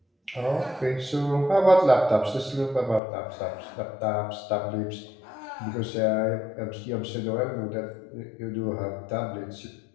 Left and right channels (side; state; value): right; drops out; at 3.0 s